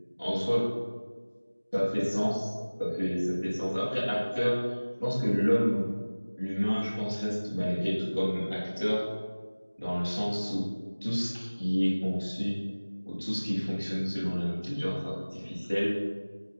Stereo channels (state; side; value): inverted; both; correlation -1.00